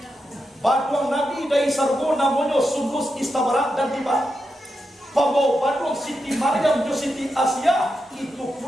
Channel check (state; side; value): normal; both; correlation 0.87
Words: baduang Nabi dari sargo namanya Sundus Istabara dan Tiba Pabau Badung Siti Maryam jo Siti Asia itu